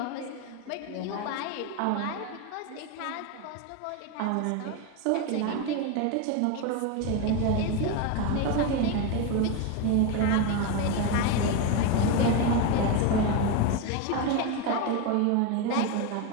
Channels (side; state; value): both; different; correlation 0.03